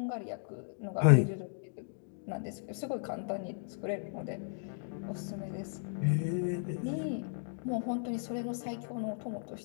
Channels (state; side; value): silent; right; digital silence